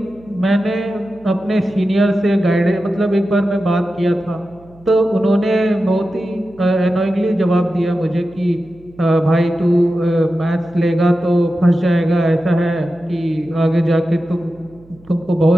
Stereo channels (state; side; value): noise; right; hum, 26 dB below the sound